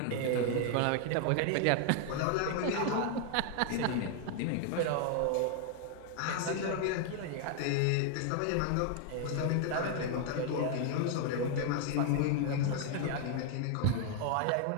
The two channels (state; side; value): different; both; correlation 0.00